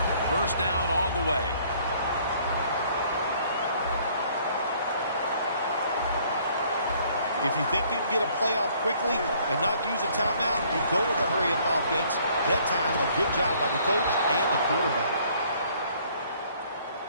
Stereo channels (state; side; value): inverted; both; correlation -0.60